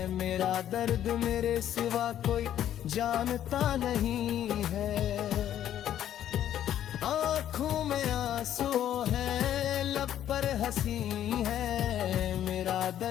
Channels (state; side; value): quieter; right; 11.1 dB